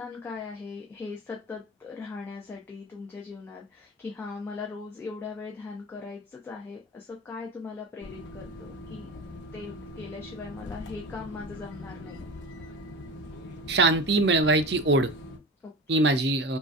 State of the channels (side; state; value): both; normal; correlation 0.30